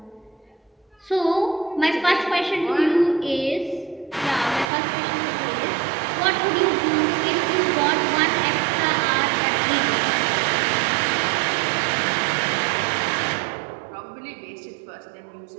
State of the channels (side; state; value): left; drops out; at 4.7 s